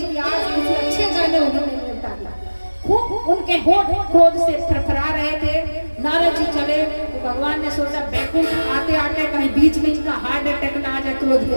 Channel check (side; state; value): both; inverted; correlation -1.00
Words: कि आज मुझे अच्छे गाने उन्होंने मिलता दिया। खूब उनके होठ क्रोध से फरफरा रहे थे। नारद जी चले तो भगवान ने सोचा बैकुंठ आते आते कहीं बीच में इनका हार्ट अटैक ना आ जाए क्रोध